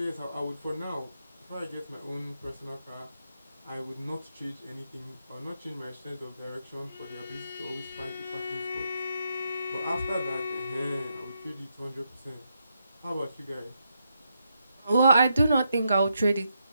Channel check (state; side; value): inverted; both; correlation -0.81